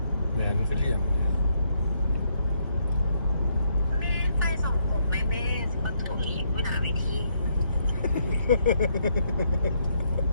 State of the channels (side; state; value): both; inverted; correlation -0.74